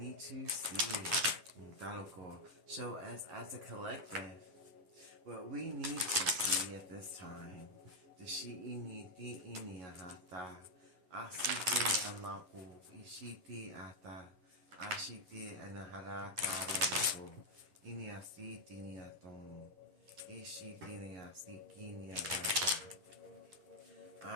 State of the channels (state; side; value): late; left; 10 ms